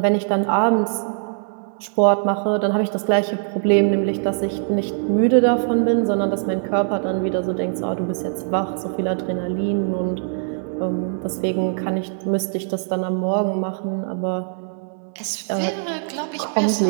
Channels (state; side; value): silent; left; digital silence